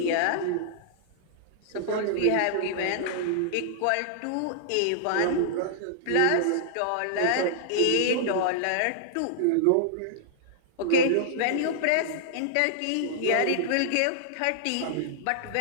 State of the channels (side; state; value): both; different; correlation -0.01